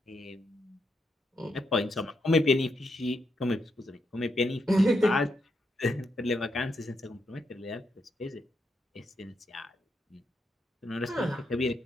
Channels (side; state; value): both; normal; correlation 0.81